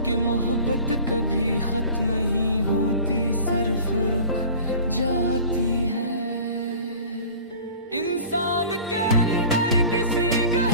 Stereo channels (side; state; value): both; inverted; correlation -0.43